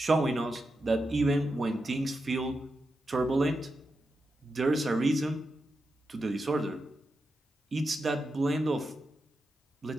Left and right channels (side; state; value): both; normal; correlation 0.88